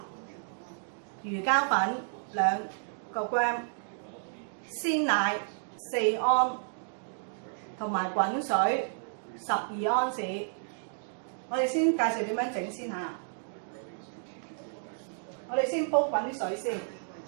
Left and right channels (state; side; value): silent; left; digital silence